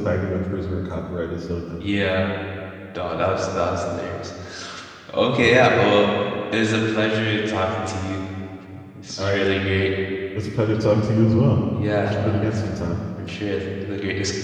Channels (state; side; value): identical; both; correlation 1.00